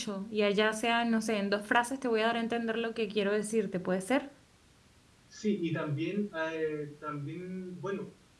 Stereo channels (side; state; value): both; identical; correlation 1.00